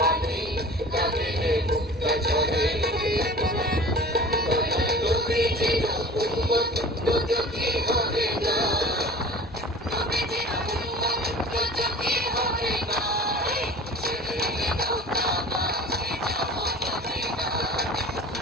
বাণী কাঁদিলে মুক্তা ঝরে। নবীজির উম্মত দুঃখী হবে না, নবীজির উম্মত দুঃখী হবে না, ছেড়ে নৌকা মাঝি যাবো মদিনা,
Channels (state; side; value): normal; both; correlation 0.41